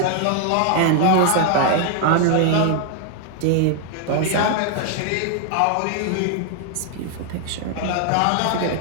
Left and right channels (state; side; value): different; both; correlation 0.00